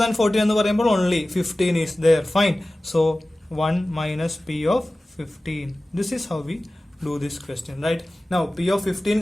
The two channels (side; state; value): both; normal; correlation 0.97